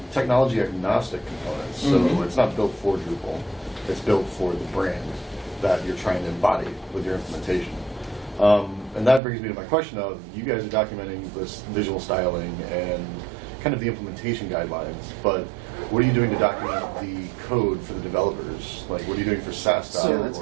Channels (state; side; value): drops out; left; at 9.2 s